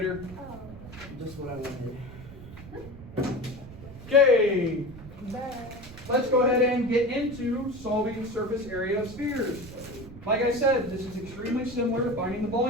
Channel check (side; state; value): right; noise; rumble, 16 dB below the sound